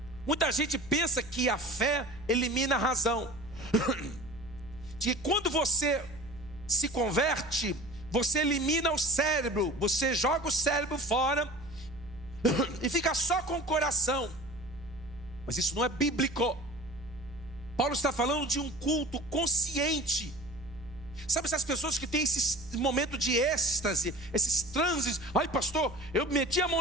Muita gente pensa que a fé elimina a razão. De que quando você se converte, você elimina o cérebro, você joga o cérebro fora e fica só com o coração. Mas isso não é bíblico. Paulo está falando de um culto consciente. Sabe essas pessoas que têm esse momento de êxtase, esses transes? Ai pastor, eu meti a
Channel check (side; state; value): right; noise; hum, 18 dB below the sound